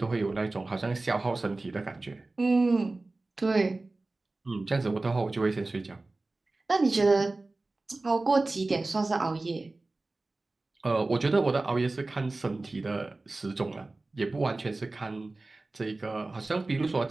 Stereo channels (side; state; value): left; quieter; 3.2 dB